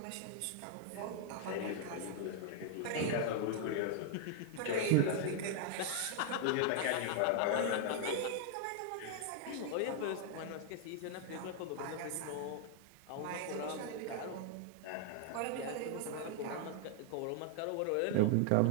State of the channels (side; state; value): both; different; correlation 0.00